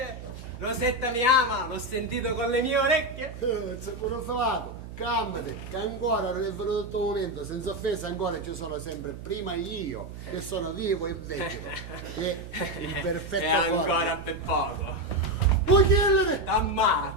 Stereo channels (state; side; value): noise; right; hum, 12 dB below the sound